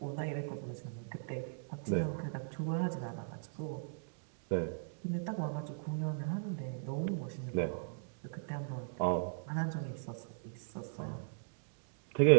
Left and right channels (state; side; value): silent; left; digital silence